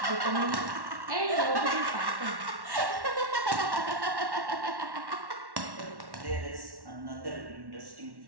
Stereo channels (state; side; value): late; left; 1.1 ms